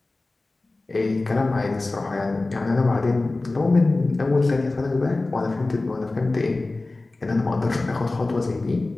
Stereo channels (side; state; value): right; quieter; 3.2 dB